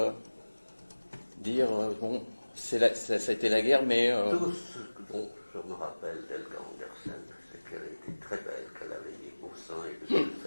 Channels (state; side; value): inverted; both; correlation -1.00